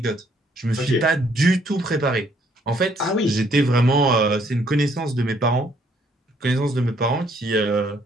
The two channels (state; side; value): normal; both; correlation 0.66